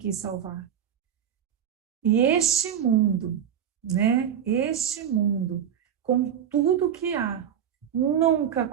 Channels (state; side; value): quieter; left; 9.1 dB